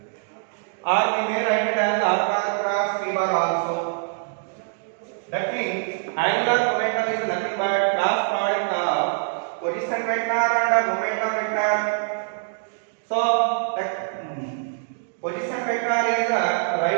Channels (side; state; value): left; silent; digital silence